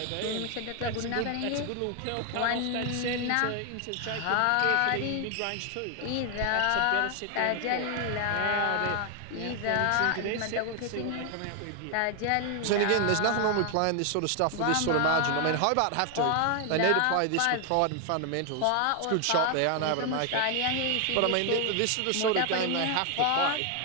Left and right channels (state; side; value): different; both; correlation 0.00